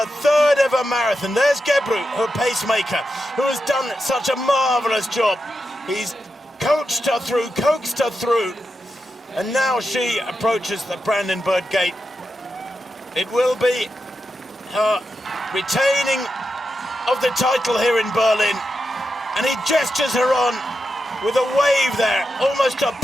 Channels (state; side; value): normal; both; correlation 0.88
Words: third ever marathon. There's Gebru, her pacemaker, who has done such a marvellous job. He's coached her through, coaxed her through, and now she approaches the Brandenburg Gate. It will be her retaining of the title here in Berlin, and he gestures her on with a wave there, almost a